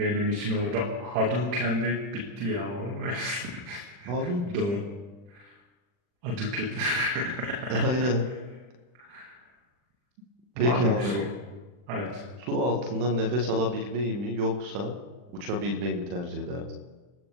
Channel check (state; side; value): late; left; 40 ms